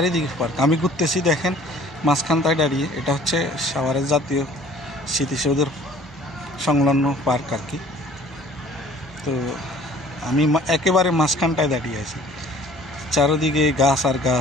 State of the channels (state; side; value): normal; both; correlation 0.52